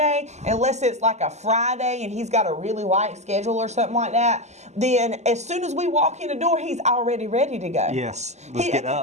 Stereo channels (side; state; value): left; late; 0.33 ms